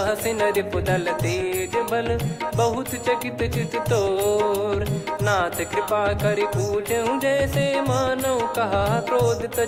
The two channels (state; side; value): identical; both; correlation 1.00